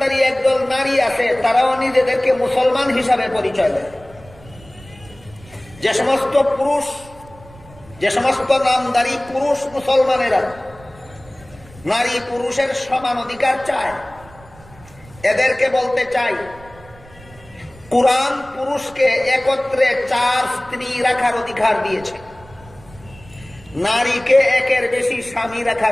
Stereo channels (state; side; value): noise; right; rumble, 22 dB below the sound